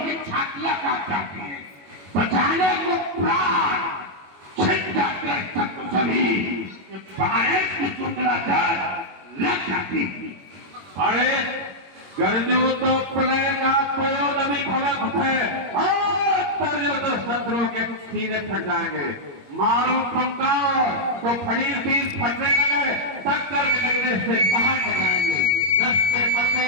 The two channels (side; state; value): left; late; 21 ms